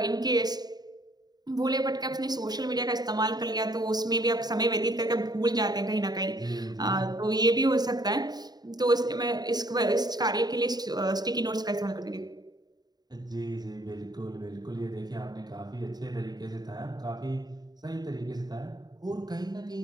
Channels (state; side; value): late; left; 0.20 ms